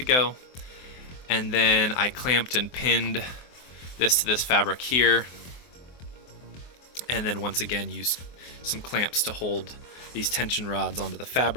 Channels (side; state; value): right; late; 24 ms